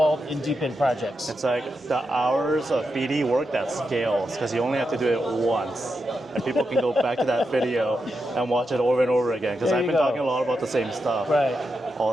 in DePIN projects. It's like the hours of BD work that scales, because you only have to do it once. And people can go back to that video and watch it over and over again, because I've been talking a lot about the same stuff all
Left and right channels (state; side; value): normal; both; correlation 0.86